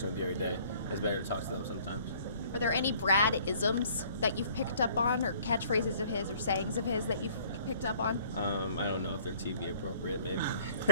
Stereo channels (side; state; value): both; inverted; correlation -0.57